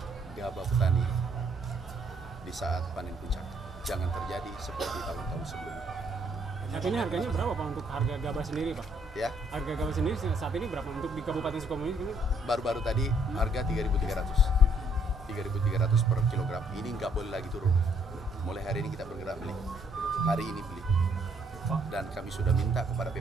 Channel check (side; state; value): both; normal; correlation 0.67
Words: gabah petani di saat panen puncak. Jangan terjadi seperti tahun-tahun sebelumnya. Saat ini harganya berapa Pak untuk harga gabah sendiri Pak? Ya, Harga gabah sendiri saat ini berapa untuk di Kabupaten Sukabumi? baru-baru tadi harga 3.300. 3.300 per kilogram. Ini nggak boleh lagi turun. Mulai hari ini kita bergerak beli. Hari ini beli. Dan kami sudah minta kepada